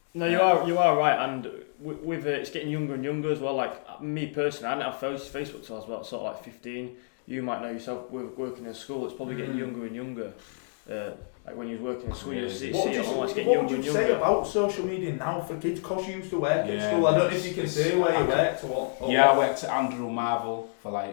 No, you are right, and with it's getting younger and younger as well. Like me personally, I didn't have Facebook till I was about sort of like 15. You might know yourself working in school. It's probably getting younger and younger. Like when you're working in school, what would you say about social media now for kids? Because you used to work at school. I don't know if you can say where you worked or what. I worked at Andrew Marvel for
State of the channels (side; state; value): right; silent; 59 dB below the other